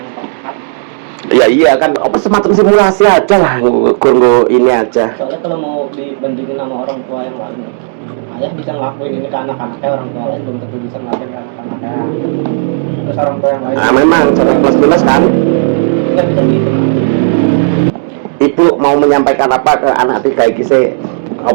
tepat. Ya iya kan, apa semacam simulasi aja lah, gue ini aja. Soalnya kalau mau dibandingin sama orang tua yang lain, ayah bisa ngelakuin ini ke anak-anaknya, orang tua lain belum tentu bisa ngelakuin ke anak-anaknya. Terus orang tua yang lain Nah memang, cara plus minus kan. nggak bisa gitu. Ibu mau menyampaikan apa ke anak tiga iki sih?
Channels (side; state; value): left; silent; digital silence